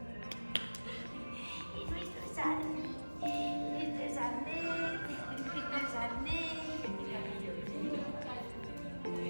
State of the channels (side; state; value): both; inverted; correlation -1.00